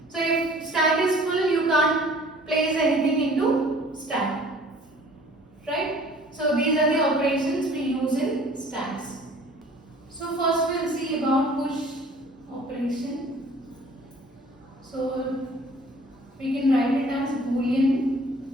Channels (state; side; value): normal; both; correlation 0.51